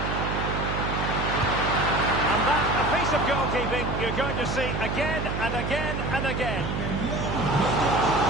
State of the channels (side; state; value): right; noise; hum, 3 dB below the sound